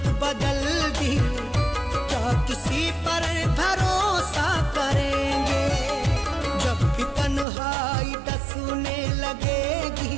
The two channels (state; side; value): drops out; left; at 7.5 s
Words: बदल दी, क्या किसी पर भरोसा करेंगे? जब भी तन्हाई डसने लगेगी